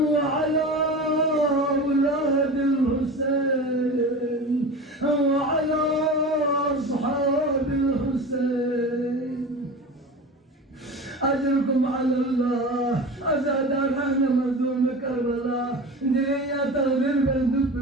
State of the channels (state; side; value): normal; both; correlation 0.32